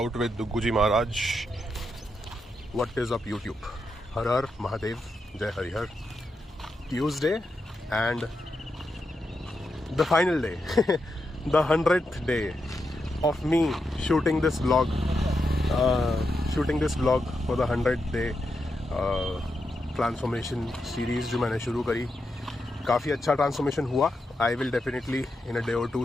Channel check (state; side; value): normal; both; correlation 0.86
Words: with Dugguji Maharaj. What is up YouTube? Har Har Mahadev, Jai Harihar. Tuesday and the final day, the 100th day of me shooting this vlog. Shooting this vlog for the 100th day transformation series जो मैंने शुरू करी. काफ़ी अच्छा ट्रांसफॉर्मेशन हुआ. I will definitely in a day or two